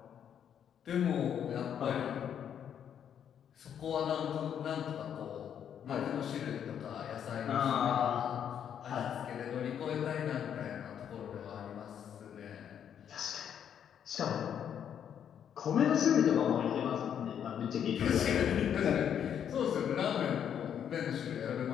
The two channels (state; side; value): quieter; right; 8.8 dB